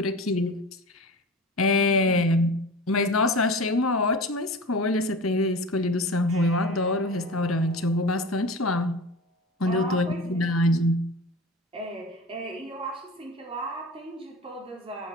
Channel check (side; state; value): both; normal; correlation 0.33